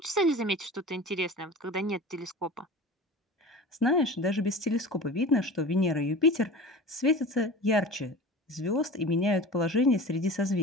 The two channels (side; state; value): both; normal; correlation 0.36